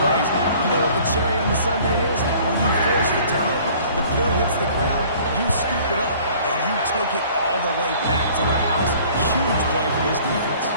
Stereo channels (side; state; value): both; inverted; correlation -0.52